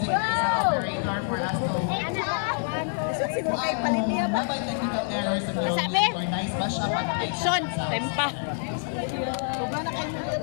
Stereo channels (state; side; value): silent; right; digital silence